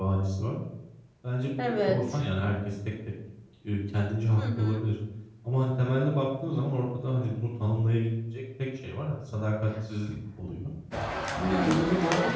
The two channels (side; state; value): both; identical; correlation 1.00